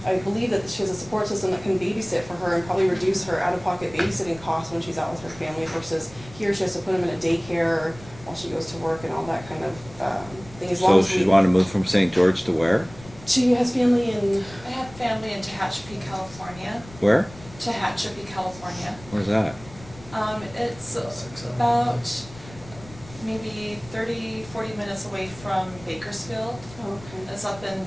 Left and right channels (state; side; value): noise; left; rumble, 19 dB below the sound